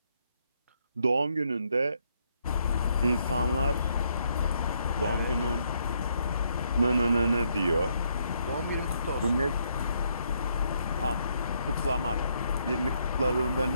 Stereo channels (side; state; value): both; inverted; correlation -0.74